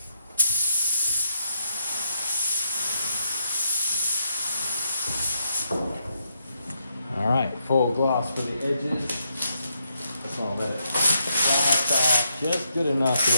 full gloss for the edges. Just want to let it wax off just good enough so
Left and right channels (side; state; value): both; inverted; correlation -0.79